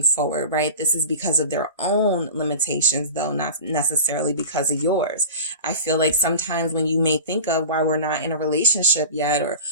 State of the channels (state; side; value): inverted; both; correlation -0.35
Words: forward, right? This is because of their own limitations, though, not necessarily because of yours. I feel like sometimes when you may think of why we're not in a relationship yet, or